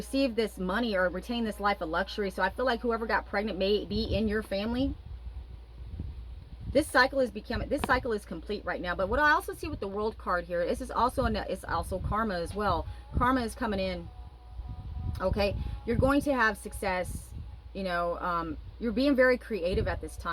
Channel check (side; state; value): both; identical; correlation 1.00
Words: this money or retain this life of luxury. So I feel like whoever got pregnant may be in your family. This cycle is complete right now. But what I also see with the World card here, this is also it's also karma as well. Karma is coming in. Okay, you're going to have success. You know, you're being very creative at this